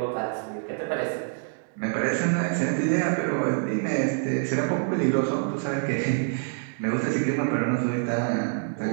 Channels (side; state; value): left; silent; 61 dB below the other